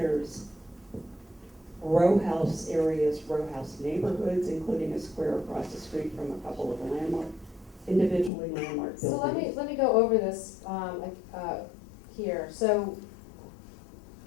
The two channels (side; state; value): right; drops out; at 8.3 s